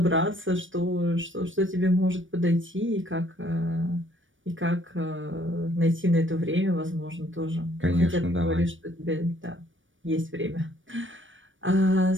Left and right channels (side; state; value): left; late; 0.56 ms